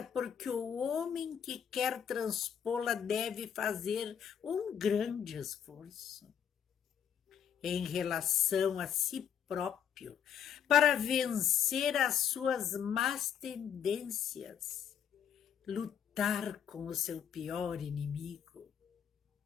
porque o homem que quer transpô-la deve fazer um grande esforço em relação a si próprio para vencer as suas más tendências, lutar com o seu pior inimigo,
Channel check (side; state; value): right; quieter; 8.5 dB